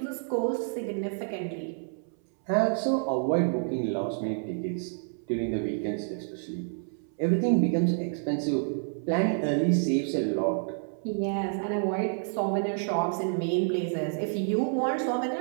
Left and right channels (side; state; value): left; silent; 59 dB below the other